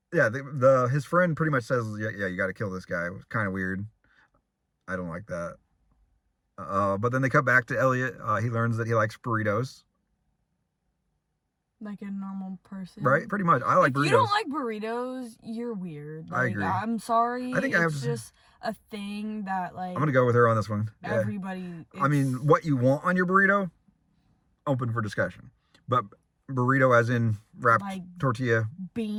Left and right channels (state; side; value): identical; both; correlation 1.00